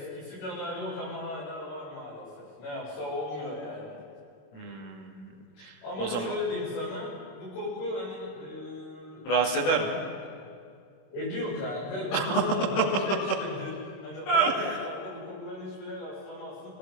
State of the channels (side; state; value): right; late; 26 ms